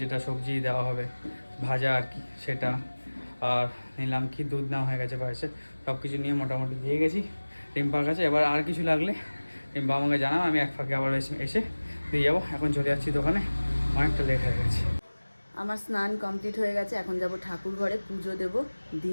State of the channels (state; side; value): inverted; both; correlation -1.00